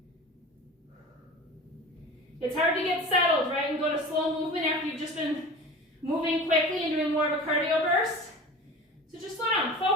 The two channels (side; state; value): both; normal; correlation 0.36